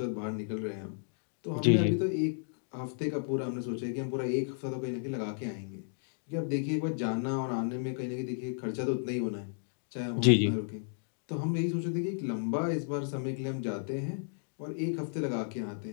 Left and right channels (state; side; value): silent; right; digital silence